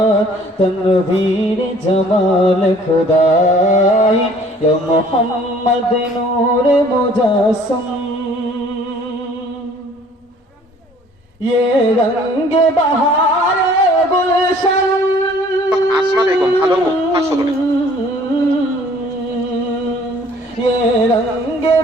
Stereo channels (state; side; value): normal; both; correlation 0.55